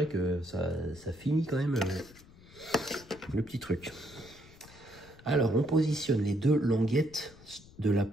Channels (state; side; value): noise; left; rumble, 22 dB below the sound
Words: que ça finit quand même le petit truc. Alors, on positionne les deux languettes de la